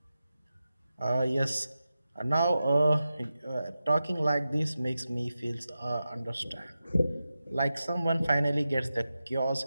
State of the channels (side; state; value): both; inverted; correlation -0.92